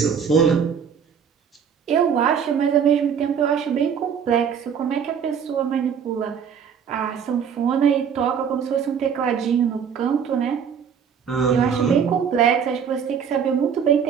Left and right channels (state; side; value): quieter; left; 7.4 dB